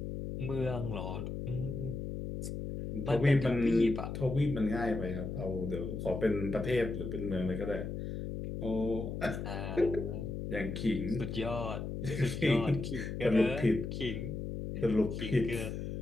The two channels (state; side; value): noise; left; hum, 5 dB below the sound